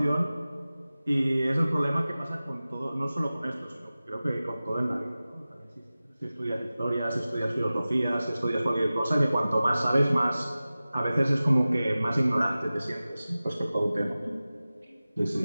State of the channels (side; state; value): both; inverted; correlation -0.96